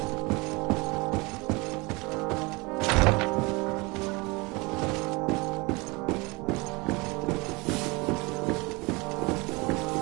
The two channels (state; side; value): quieter; left; 26.0 dB